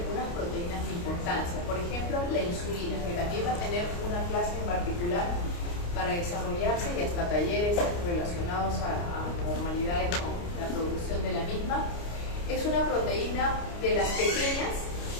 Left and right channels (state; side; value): late; right; 29 ms